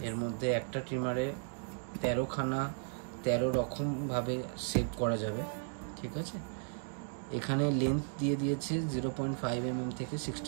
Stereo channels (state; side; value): silent; left; digital silence